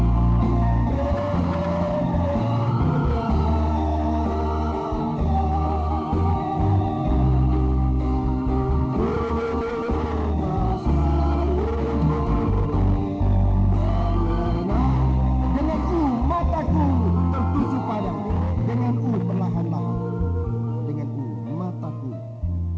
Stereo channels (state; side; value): identical; both; correlation 1.00